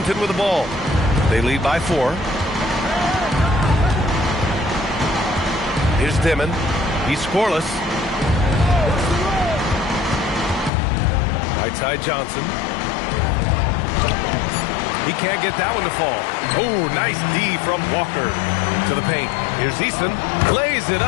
with the ball. They lead by 4. Here's Dimon. He's scoreless. Right side Johnson. He can't get that one to fall. Oh, nice D from Walker to the paint. Here's Eason. Lays it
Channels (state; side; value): drops out; right; at 10.7 s